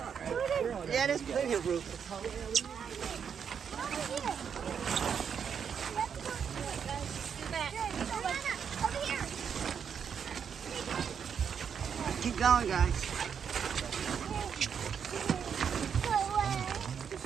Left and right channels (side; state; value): left; quieter; 7.3 dB